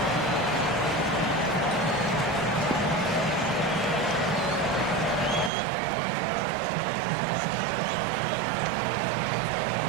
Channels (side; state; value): left; drops out; at 5.5 s